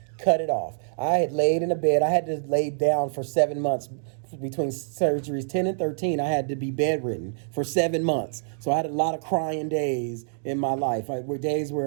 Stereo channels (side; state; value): left; silent; digital silence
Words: cut it off. I had laid in a bed. I had to lay down for 7 months between surgeries 10 and 13. I had to be bedridden for 7 months. So I had a lot of crying days in my life. Were days